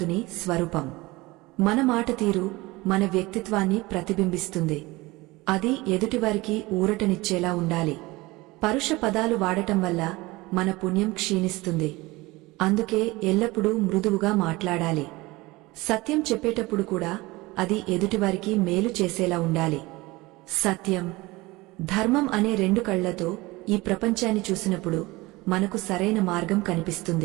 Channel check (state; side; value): quieter; left; 21.5 dB